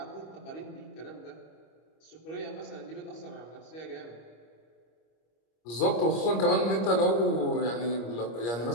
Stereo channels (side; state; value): right; late; 25 ms